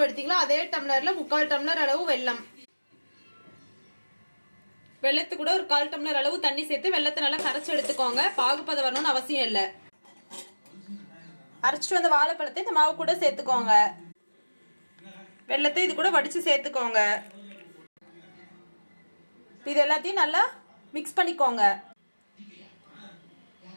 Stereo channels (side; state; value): both; inverted; correlation -1.00